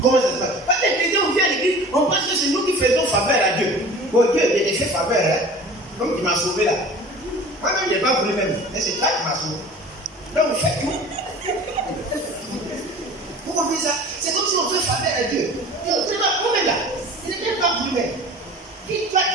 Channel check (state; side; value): normal; both; correlation 0.41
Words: Comment ça se passe? Parce que les chrétiens, on vient à l'église, on pense que c'est nous qui faisons faveur à Dieu. Bon, Dieu, il a fait faveur, hein? Comme tu m'as sauvé là. Moi-même, je n'ai pas voulu même. Mais c'est toi qui m'as sauvé. Donc, vous faites tout. Vous comprenez ça? C'est comme si on fait faveur à Dieu. Dieu, tu n'es pas vous-même là. Il n'est pas voulu même. Qui toi